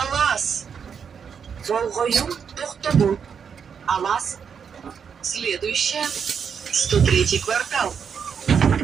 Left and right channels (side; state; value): left; quieter; 6.9 dB